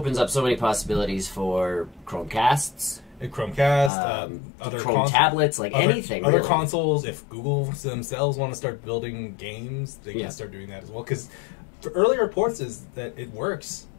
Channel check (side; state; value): right; drops out; at 3.9 s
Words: up so many possibilities for Chromecasts, Chromecast, other Chrome tablets, like anything. Other really. consoles. If Google themselves want to start building games, they can start doing that as well. Because early reports is that it works.